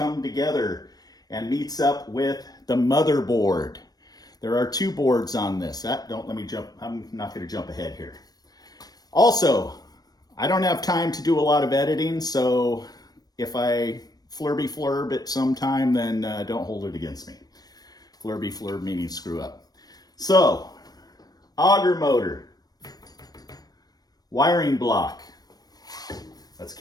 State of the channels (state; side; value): late; right; 0.19 ms